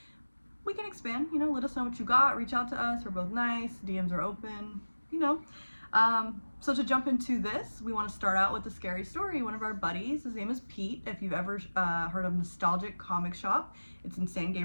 we can expand. Let us know what you got. Reach out to us. We're both nice. DMs are open. So to jump into this, we want to start out with a scary story. One of our buddies, his name is Pete. If you've ever heard of Nostalgic Comic Shop, it's in San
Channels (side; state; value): both; inverted; correlation -1.00